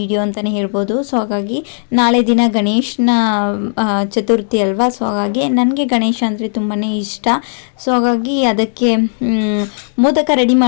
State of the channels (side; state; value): right; silent; 70 dB below the other